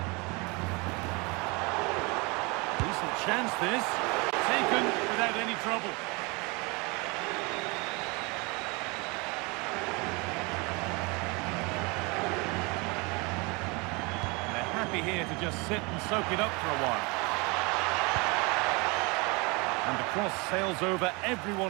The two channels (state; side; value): quieter; left; 27.8 dB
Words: Decent chance this. Taken without any trouble. And they're happy here to just sit and soak it up for a while. And the cross sails over